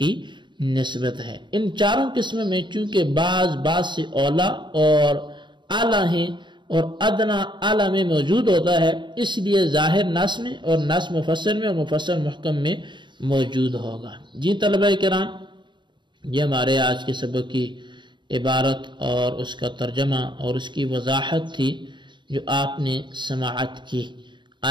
نسبت ہے۔ ان چاروں قسم میں چونکہ بعض سے اولا اور اعلیٰ ہیں اور ادنا اعلیٰ میں موجود ہوتا ہے، اس لیے ظاہر نص میں اور نص مفسر میں اور مفسر محکم میں موجود ہوگا۔ جی طلبہ کرام، یہ ہمارے آج کے سبق کی عبارت اور اس کا ترجمہ اور اس کی وضاحت تھی جو آپ نے سماعت کی۔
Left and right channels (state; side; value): late; left; 0.23 ms